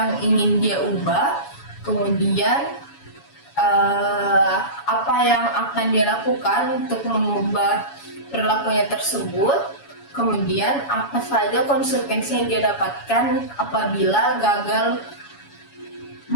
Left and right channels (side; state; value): right; late; 7.1 ms